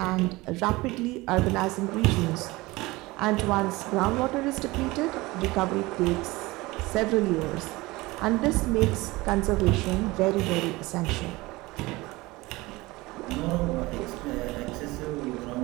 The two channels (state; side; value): quieter; left; 21.1 dB